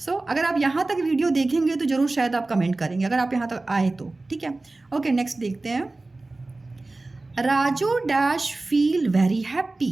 अगर आप यहाँ तक वीडियो देखेंगे तो ज़रूर शायद आप कमेंट करेंगे, अगर आप यहाँ तक आए तो, ठीक है। ओके, नेक्स्ट देखते हैं। Raju dash feel very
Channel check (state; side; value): quieter; left; 3.1 dB